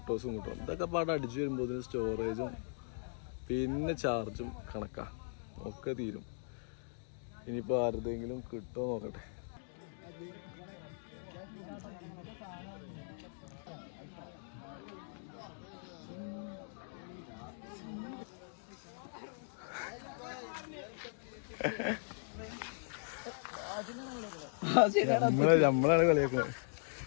കിട്ടണം. ഇതൊക്കെ പാടെ അടിച്ചു വരുമ്പോൾ ഇതിന് സ്റ്റോറേജും പിന്നെ ചാർജും കണക്കാ ഒക്കെ തീരും. ഇനിയിപ്പോൾ ആരുടെയെങ്കിലും കിട്ടുമോ നോക്കട്ടെ. നമ്മളാണ് കളിയാക്കുന്നത്.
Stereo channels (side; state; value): right; silent; digital silence